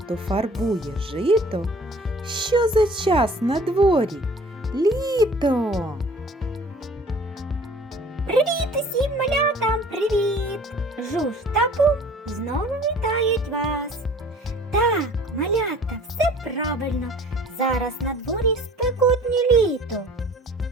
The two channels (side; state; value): both; normal; correlation 0.49